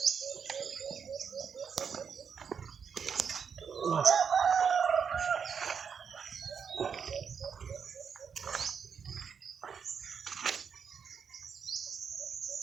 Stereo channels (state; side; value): quieter; left; 6.7 dB